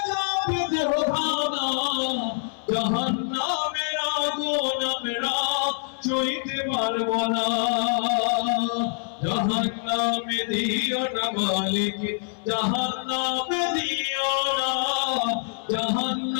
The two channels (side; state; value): right; silent; 58 dB below the other